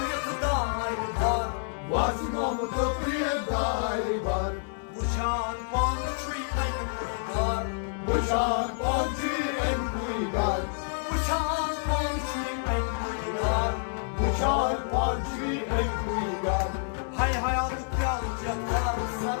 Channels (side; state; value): right; silent; digital silence